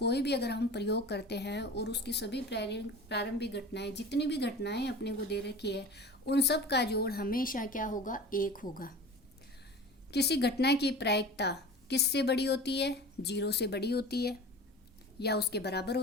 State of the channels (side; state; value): both; normal; correlation 0.37